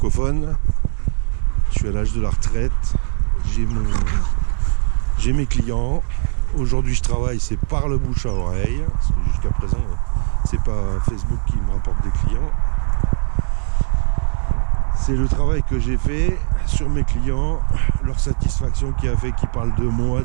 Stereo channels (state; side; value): silent; left; 58 dB below the other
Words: Je suis à l'âge de la retraite, j'ai mes clients. Aujourd'hui, je travaille, c'est par le bouche à oreille, parce que jusqu'à présent, c'est pas Facebook qui me rapporte des clients. C'est le travail que j'ai fait sur mes clients, leur satisfaction qui a fait qu'ils parlent de moi